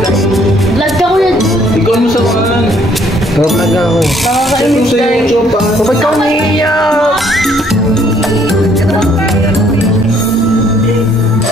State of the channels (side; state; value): both; normal; correlation 0.64